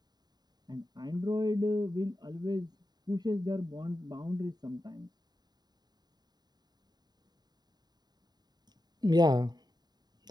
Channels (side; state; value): left; late; 0.20 ms